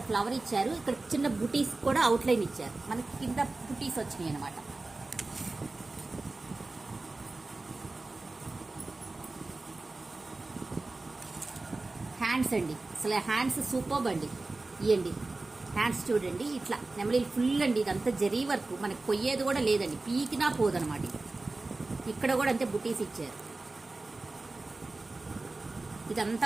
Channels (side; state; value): left; quieter; 3.3 dB